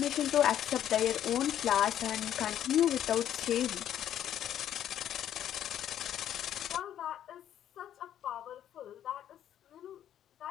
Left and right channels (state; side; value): quieter; right; 10.8 dB